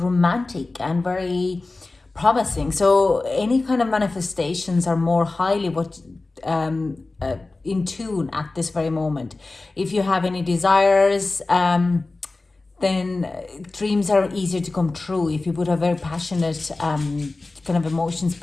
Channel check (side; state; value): right; quieter; 3.3 dB